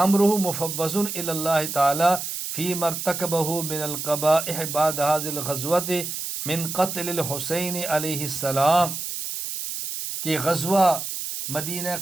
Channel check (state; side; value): noise; right; hiss, 5 dB below the sound